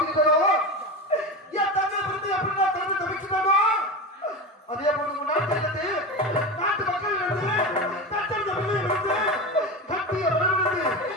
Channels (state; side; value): normal; both; correlation 0.23